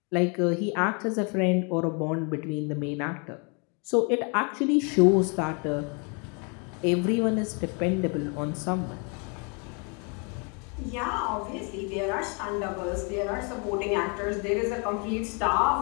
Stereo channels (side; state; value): right; quieter; 35.0 dB